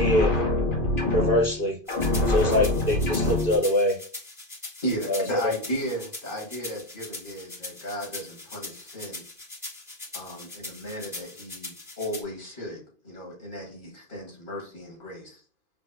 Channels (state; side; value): late; left; 2.5 ms